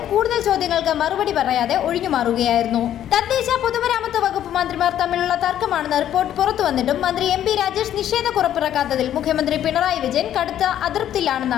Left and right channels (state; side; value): quieter; right; 11.1 dB